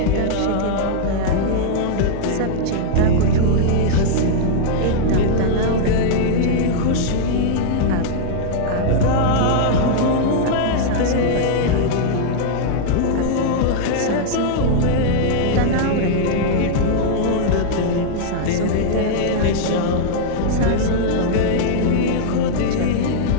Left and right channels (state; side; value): different; both; correlation -0.01